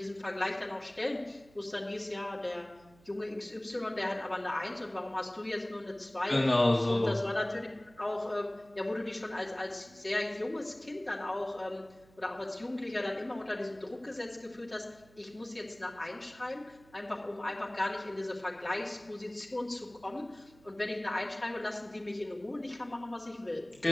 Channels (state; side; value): noise; right; hum, 26 dB below the sound